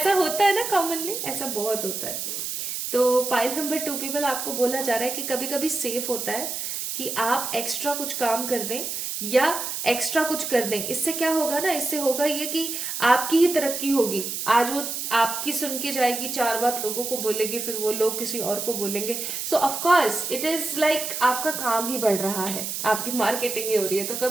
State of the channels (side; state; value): right; noise; hiss, 4 dB below the sound